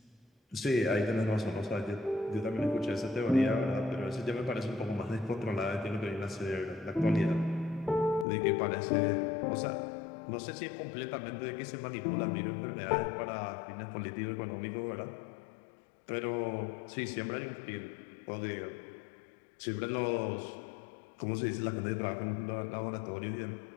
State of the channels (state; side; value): drops out; right; at 8.2 s